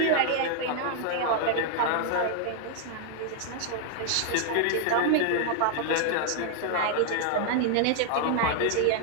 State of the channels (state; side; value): different; both; correlation 0.00